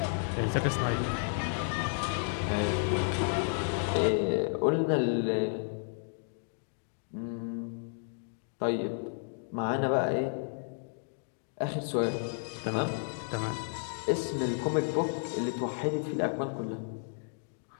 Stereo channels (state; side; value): silent; right; digital silence